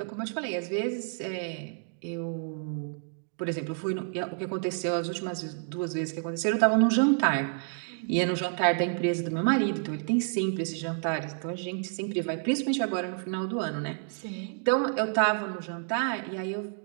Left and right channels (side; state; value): left; silent; 58 dB below the other